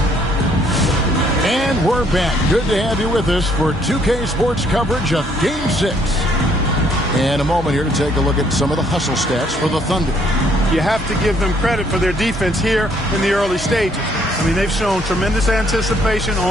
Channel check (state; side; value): normal; both; correlation 0.66